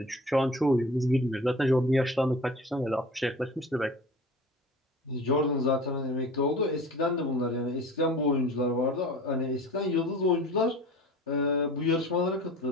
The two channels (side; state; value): both; normal; correlation 0.40